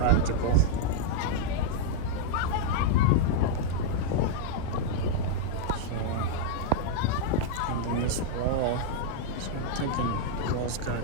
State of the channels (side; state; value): both; different; correlation -0.01